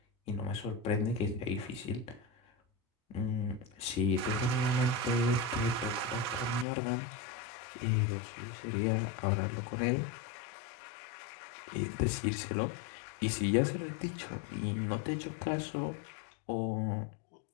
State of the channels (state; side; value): drops out; right; at 6.7 s